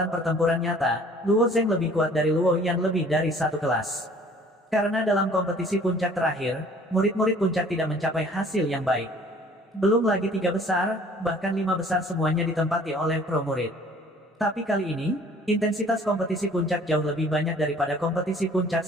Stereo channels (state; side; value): normal; both; correlation 0.53